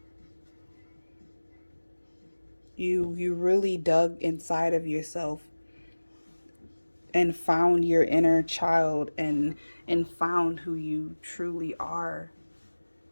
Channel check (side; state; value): both; inverted; correlation -1.00